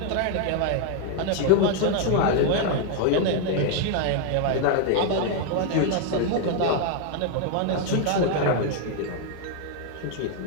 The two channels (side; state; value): both; different; correlation 0.00